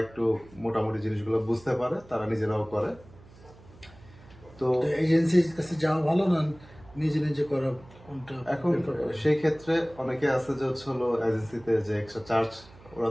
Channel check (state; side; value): noise; right; hum, 23 dB below the sound